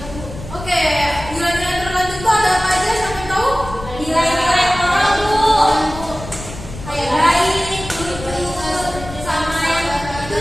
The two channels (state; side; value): noise; left; rumble, 12 dB below the sound